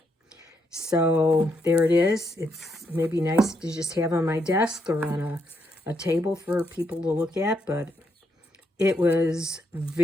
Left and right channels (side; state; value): both; normal; correlation 0.77